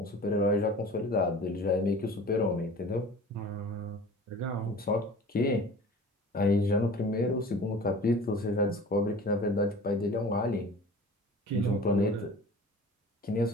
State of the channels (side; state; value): both; normal; correlation 0.42